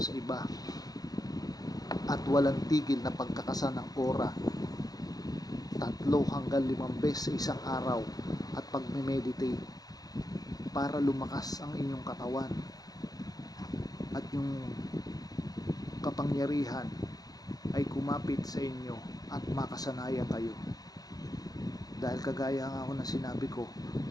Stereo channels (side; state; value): right; late; 0.18 ms